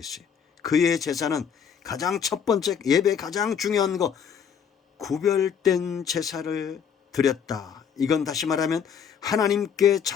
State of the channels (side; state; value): right; quieter; 7.5 dB